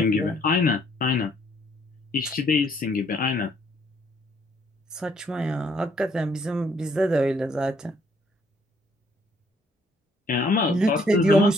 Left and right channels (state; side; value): normal; both; correlation 0.66